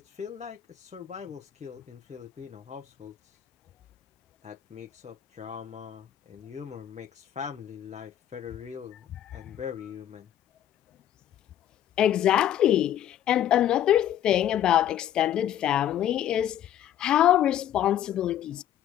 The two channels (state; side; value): quieter; right; 11.3 dB